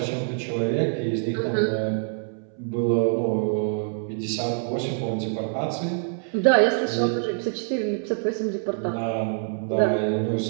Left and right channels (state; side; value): silent; left; 62 dB below the other